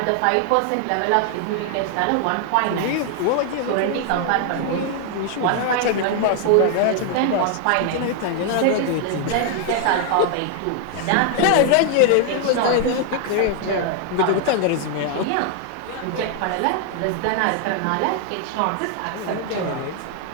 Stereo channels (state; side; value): different; both; correlation 0.00